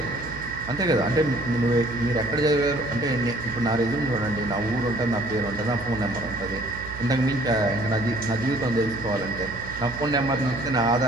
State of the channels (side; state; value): right; noise; hum, 14 dB below the sound